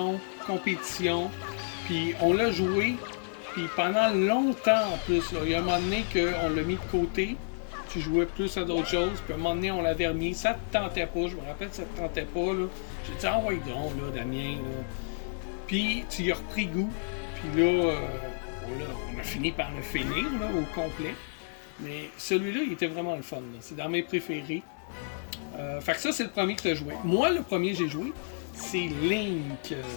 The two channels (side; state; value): right; silent; digital silence